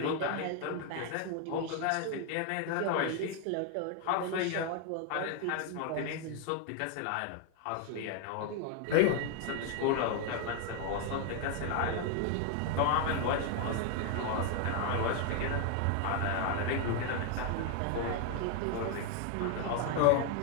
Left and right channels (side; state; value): both; different; correlation 0.01